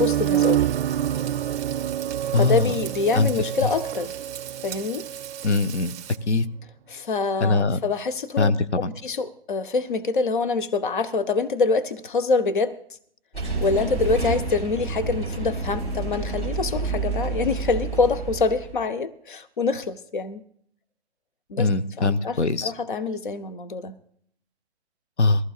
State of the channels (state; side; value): normal; both; correlation 0.03